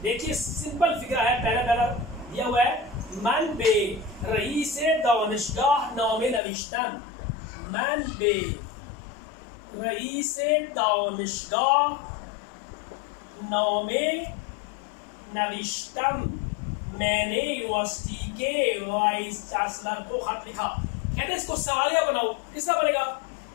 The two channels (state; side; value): drops out; right; at 6.4 s